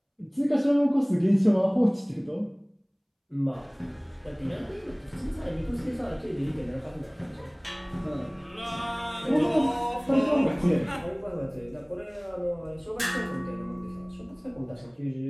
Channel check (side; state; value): both; identical; correlation 1.00